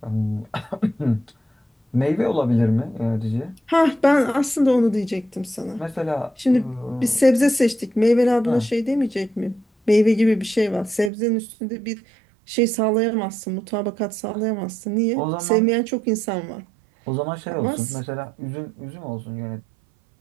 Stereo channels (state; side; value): drops out; left; at 11.1 s